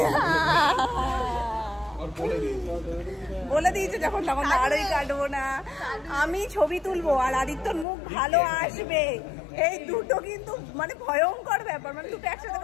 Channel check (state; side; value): drops out; right; at 7.9 s